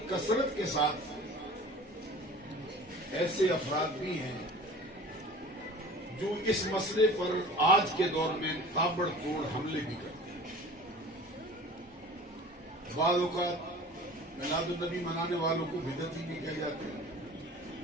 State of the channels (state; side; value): normal; both; correlation 0.42